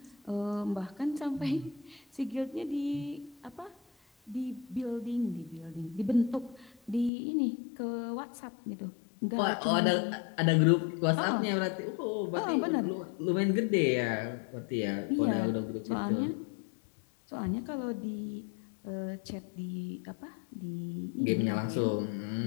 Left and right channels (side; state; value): right; drops out; at 7.1 s